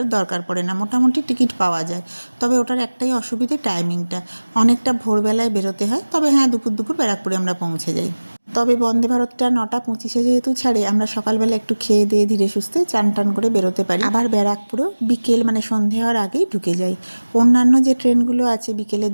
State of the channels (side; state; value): both; inverted; correlation -1.00